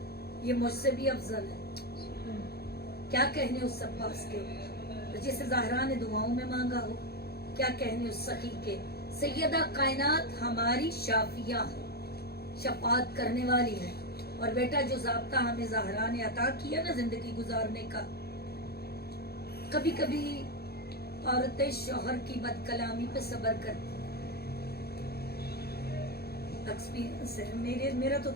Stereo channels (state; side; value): late; right; 0.46 ms